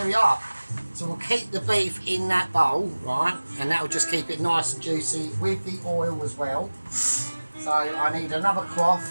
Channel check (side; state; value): both; inverted; correlation -1.00